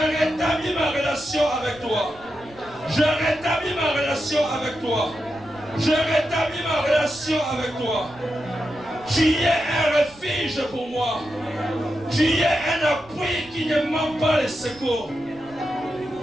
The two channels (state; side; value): noise; right; rumble, 24 dB below the sound